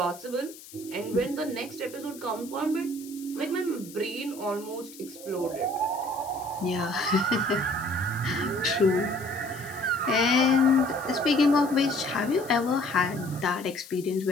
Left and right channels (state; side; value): noise; left; hiss, 18 dB below the sound